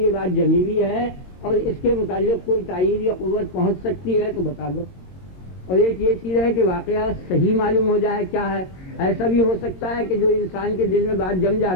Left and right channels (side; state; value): right; late; 22 ms